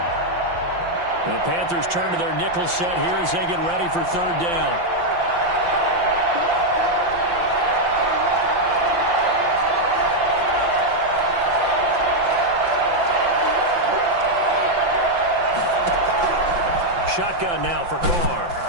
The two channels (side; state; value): left; late; 5.8 ms